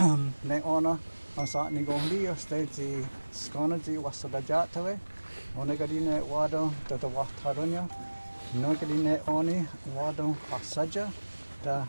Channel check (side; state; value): both; inverted; correlation -1.00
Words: ne ona asa ni gohli stage skona ji wasada jatawe onegadine wado da wataronya nogadine oni wado asaja da